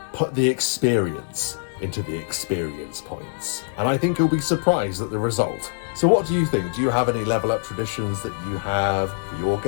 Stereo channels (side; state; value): right; silent; digital silence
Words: Put the experience into the experience points. And I think you'll be surprised at the result. So what do you think? Do you have any level up traditions that you have for your